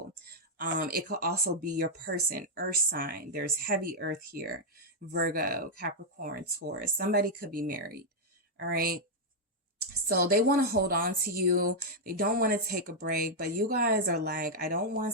It could also be your person, earth sign. There's heavy earth here. Virgo, Capricorn, Taurus. Somebody could be married. All right. So they want to hold on to you. They don't want to take a break, but you guys are like, I don't want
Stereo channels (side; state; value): both; normal; correlation -0.02